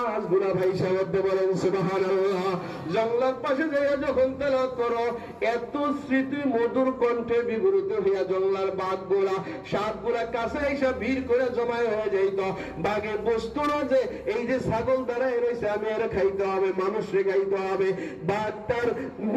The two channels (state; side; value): identical; both; correlation 1.00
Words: ভাইসা উঠতে। বলেন সুবহানাল্লাহ। জঙ্গলের পাশে যাইয়া যখন তেলাওয়াত করো, এত স্মৃতি মধুর কণ্ঠে বিবৃত হইয়া জঙ্গলার বাঘগুলা, সাপগুলা কাছে এসে ভিড় করে জমায় হয়ে যাইত। বাঘে বসতো না যে এই যে ছাগল দাঁড়ায় রয়েছে, আমি এর খাইতে হবে, মানুষরে খাইতে হবে। বাঘ তার